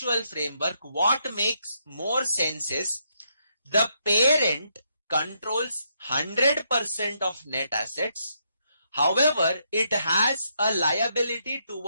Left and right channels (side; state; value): both; inverted; correlation -0.77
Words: framework, what makes more sense is the parent controls 100% of net assets. However, it has a liability